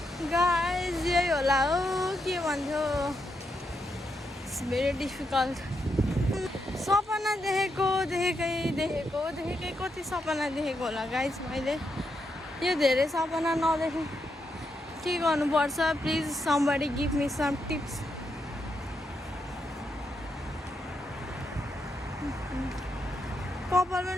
गाइस यही होला हो के भन्थ्यो इट्स भेरी डिफिकल्ट सपना देखेकै कति सपना देखेको होला गाइस मैले यो धेरै सपना नदेखेँ के गर्नुपर्छ please somebody give me some tips कपाल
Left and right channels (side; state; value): both; normal; correlation 0.82